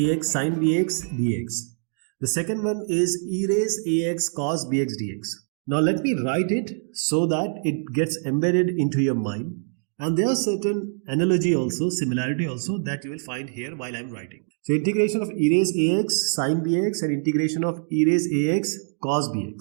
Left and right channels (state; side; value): silent; left; digital silence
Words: sin bx dx. The second one is e raise ax cos bx dx. Now let me write it so that it gets embedded into your mind. And there are certain analogy also, similarity also that you will find here while I am writing. So integration of e raise ax sin bx and integration of e raise ax cos